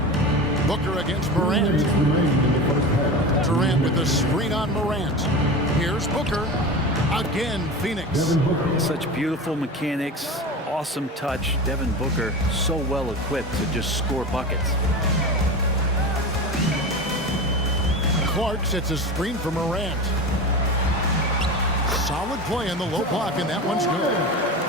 Booker against Morant. Durant with the screen on Morant. Here's Booker. Again, Phoenix. Such beautiful mechanics, awesome touch. Devin Booker so well equipped to just score buckets. Clark sets a screen for Morant. Solid play in the low block, and that one's good.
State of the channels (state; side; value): normal; both; correlation 0.28